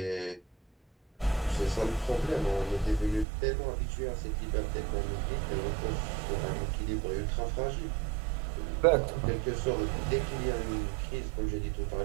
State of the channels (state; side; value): drops out; left; at 3.2 s